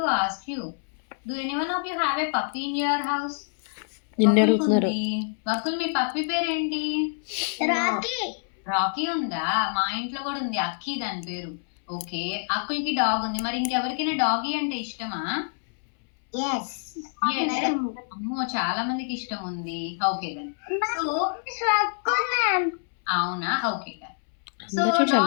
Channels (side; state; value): right; silent; 61 dB below the other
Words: ask you. Do anyone of you have a puppy in your house? నిన్ను అడుగుతున్నారు. వకుల్, మీ పప్పీ పేరేంటి? రాకీ రాకీ ఉందా? మా ఇంట్లో కూడా ఉంది, అక్కి దాని పేరు. ఓకే, అక్కులకి డాగ్ ఉంది. మరి ఇంకెవరికైనా డాగీ అంటే ఇష్టమా? yes అమ్మో, చాలా మందికి ఇష్టం ఉంది. Okay then. సో స్వక్కున్నాం అవునా, ఓకే దెన్. సో అందరూ చక్కగా